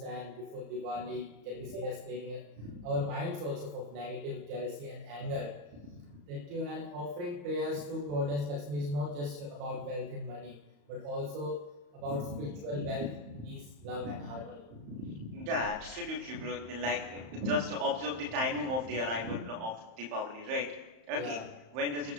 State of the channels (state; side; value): late; left; 34 ms